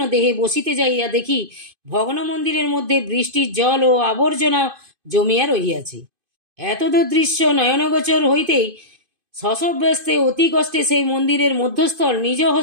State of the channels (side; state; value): left; late; 2.5 ms